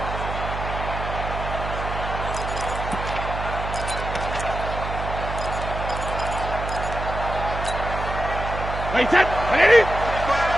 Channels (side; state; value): right; noise; hum, 5 dB below the sound